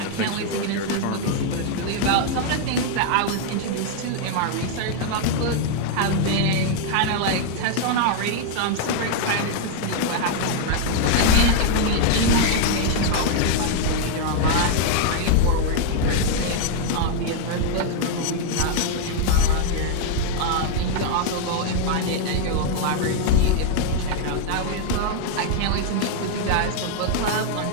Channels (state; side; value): different; both; correlation 0.00